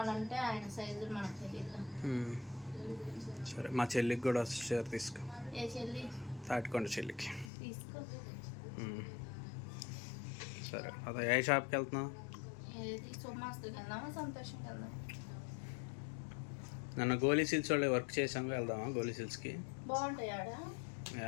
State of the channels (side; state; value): right; drops out; at 7.5 s